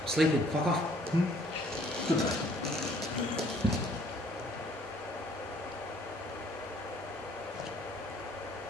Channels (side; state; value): both; normal; correlation 0.60